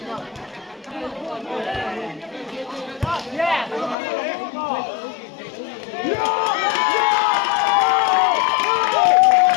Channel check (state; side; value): drops out; right; at 4.0 s